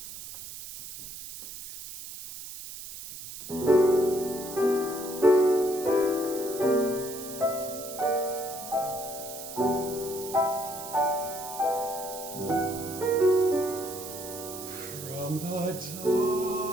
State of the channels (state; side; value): noise; right; hiss, 11 dB below the sound